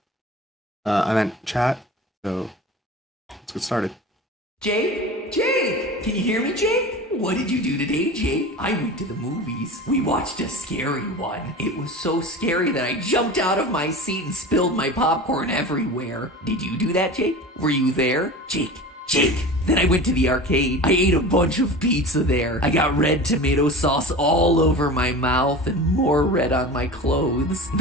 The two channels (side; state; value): both; normal; correlation 0.33